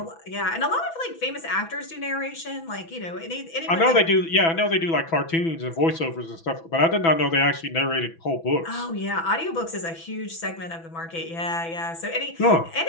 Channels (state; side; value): late; right; 6.0 ms